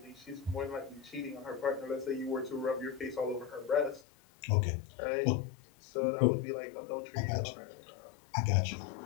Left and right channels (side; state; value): right; drops out; at 4.0 s